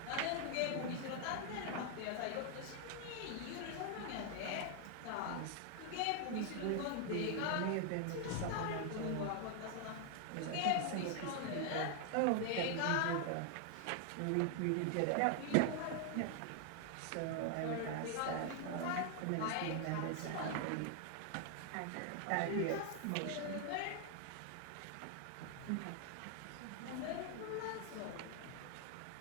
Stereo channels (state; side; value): different; both; correlation 0.00